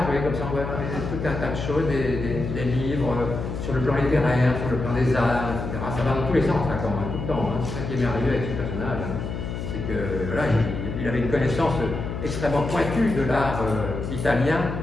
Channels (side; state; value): left; noise; hum, 5 dB below the sound